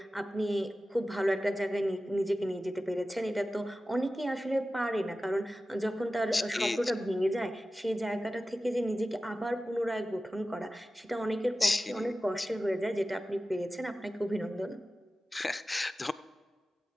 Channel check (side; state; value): both; normal; correlation 0.95